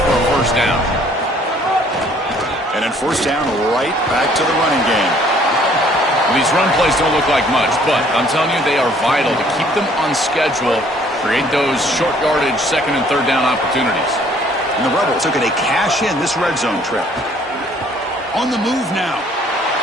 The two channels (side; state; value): both; normal; correlation 0.59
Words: for a first down. And then first down right back to the running game. Well, these run plays don't look like much, but I'm telling you, they are vital to keep them on schedule, create those short yardage second and third down opportunities. And the Rebels are going to cash in this red zone trip. On the move now.